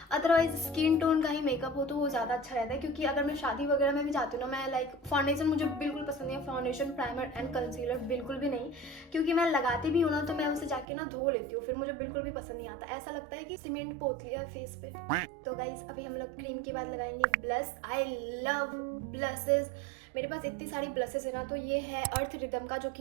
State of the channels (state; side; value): drops out; left; at 10.9 s